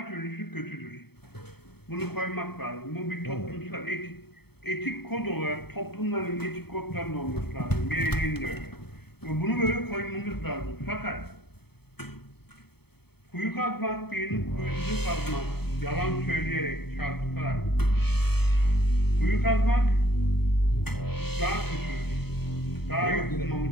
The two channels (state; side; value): late; right; 0.97 ms